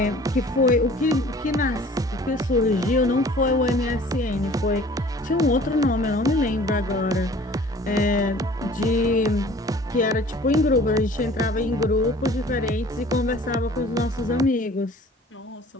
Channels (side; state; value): both; normal; correlation 0.49